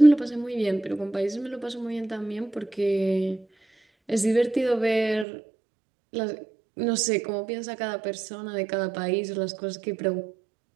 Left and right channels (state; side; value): drops out; left; at 5.2 s